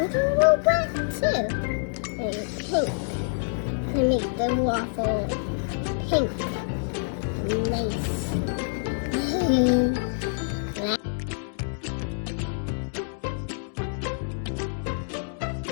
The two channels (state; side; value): silent; right; digital silence